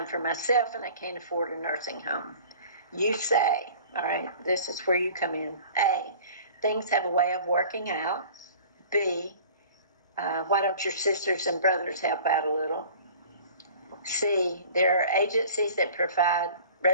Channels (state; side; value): inverted; both; correlation -0.46